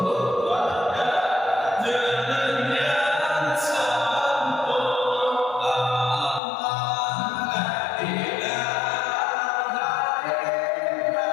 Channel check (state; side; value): drops out; right; at 6.4 s